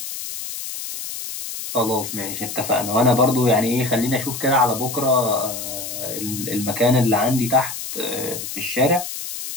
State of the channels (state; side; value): noise; left; hiss, 7 dB below the sound